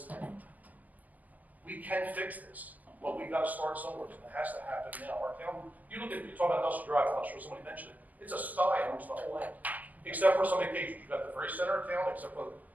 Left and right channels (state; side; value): late; left; 0.079 ms